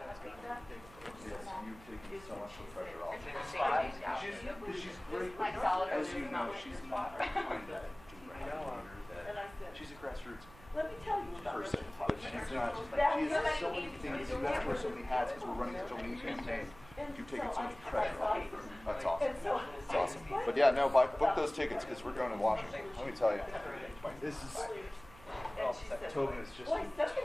you taking so much of the pressure off. She's great. As you know, she's not behind that. She's a grassroots person, but she's not. She has so many things. You have to wear so many hats because we're running such a lean campaign. You've taken so much pressure off. That's awesome. It's awesome. But yeah, no, book those tickets because we're going to Washington. Let me tell you, this is. Tobin is just a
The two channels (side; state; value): right; noise; hum, 21 dB below the sound